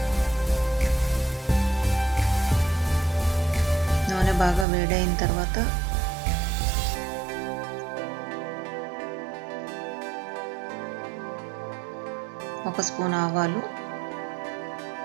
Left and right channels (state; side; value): drops out; left; at 4.7 s